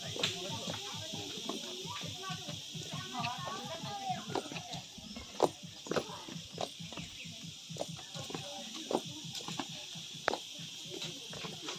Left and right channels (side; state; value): both; identical; correlation 1.00